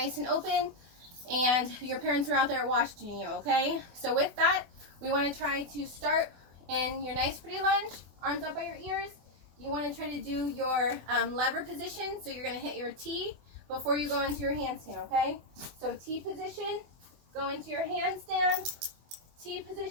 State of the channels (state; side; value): late; left; 24 ms